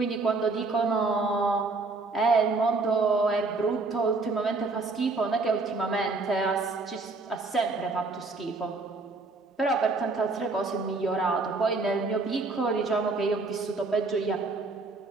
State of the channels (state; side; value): quieter; left; 3.7 dB